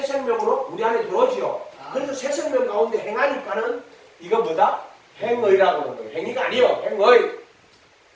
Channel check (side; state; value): both; identical; correlation 1.00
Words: 생명으로 우리 안에 들어오지요. 그래서 새 생명 가운데 행하니까는 이거 뭐다? 행의라고 하는 거예요. 행위가 아니요. 행의.